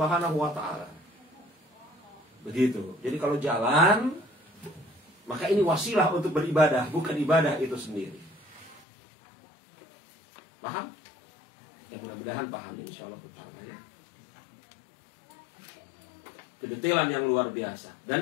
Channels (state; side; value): drops out; right; at 8.8 s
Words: wa taala. Begitu. Jadi kalau jalan, maka ini wasilah untuk beribadah, bukan ibadah itu sendiri. Paham? Ya mudah-mudahan paham, insyaallah taala ya. Kedetilan yang luar biasa.